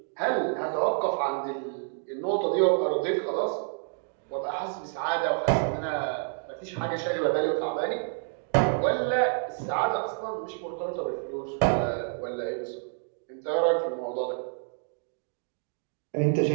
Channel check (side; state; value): left; silent; 59 dB below the other